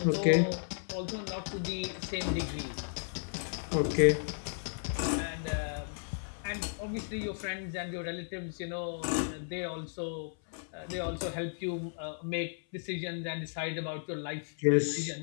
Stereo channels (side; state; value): right; silent; 55 dB below the other